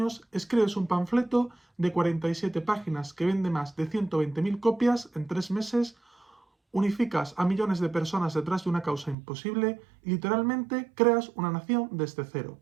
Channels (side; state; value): left; drops out; at 9.2 s